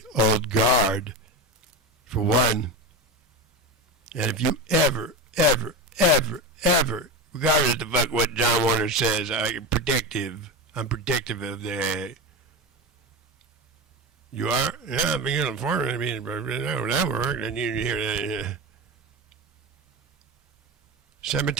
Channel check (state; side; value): normal; both; correlation 0.21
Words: old guard. For one. And if you ever, regardless of the fuck what John Warner says, I'm predictive of the... You are? Yeah, I'm being informed. I mean, that worked. And you hear that.